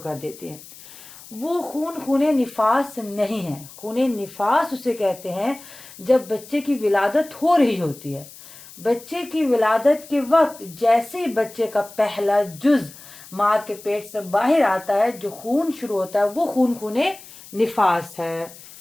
کر دیتی ہیں۔ وہ خون نفاس نہیں ہے۔ خون نفاس اسے کہتے ہیں جب بچے کی ولادت ہو رہی ہوتی ہے، بچے کی ولادت کے وقت جیسے ہی بچے کا پہلا جز ماں کے پیٹ سے باہر آتا ہے جو خون شروع ہوتا ہے وہ خون نفاس ہے،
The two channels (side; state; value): left; noise; hiss, 19 dB below the sound